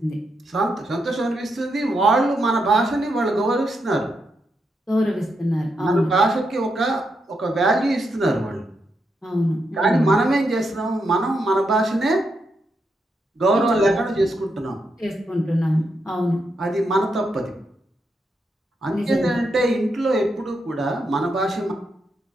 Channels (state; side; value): normal; both; correlation 0.83